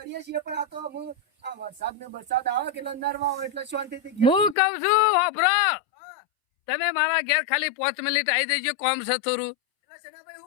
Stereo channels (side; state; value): right; drops out; at 4.5 s